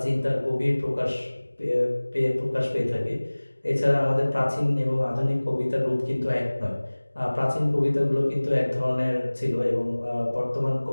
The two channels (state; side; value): inverted; both; correlation -1.00